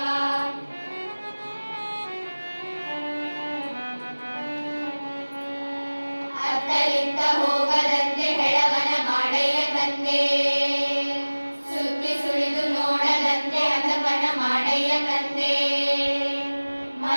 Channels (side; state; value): both; inverted; correlation -1.00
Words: ಅತ್ತಲಿತ್ತ ಹೋಗದಂತೆ ಹೆಳವನ ಮಾಡಯ್ಯ ತಂದೆ ಸುತ್ತಿ ಸುಳಿದು ನೋಡದಂತೆ ಹತಪನ ಮಾಡಯ್ಯ ತಂದೆ